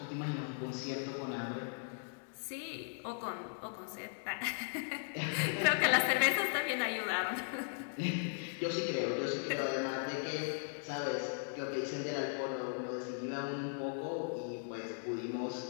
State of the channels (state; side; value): silent; right; 53 dB below the other